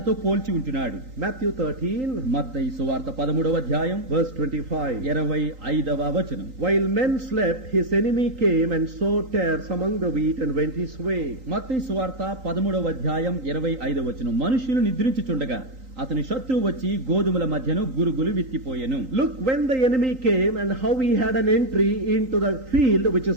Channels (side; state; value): left; late; 3.8 ms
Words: పోల్చి ఉంటున్నాడు. Matthew 13, మత్తయి సువార్త 13వ అధ్యాయం verse 25. 25వ వచనం. While men slept, his enemy came and sowed tares among the wheat and went his way. మత్తయి సువార్త 13వ అధ్యాయం 25వ వచనం. మనుషులు నిద్రించుచుండగా అతని శత్రువు వచ్చి గోధుమల మధ్యను గురుగులు విత్తిపోయెను. Look, when the enemy came and how he had an entry into the field which